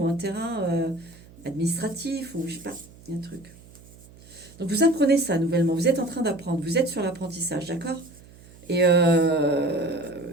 un terrain administratif, ou je sais pas, il y a un truc. Donc vous apprenez ça nouvellement, vous êtes en train d'apprendre, vous êtes sur l'apprentissage, d'accord? Et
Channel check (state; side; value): noise; right; hum, 22 dB below the sound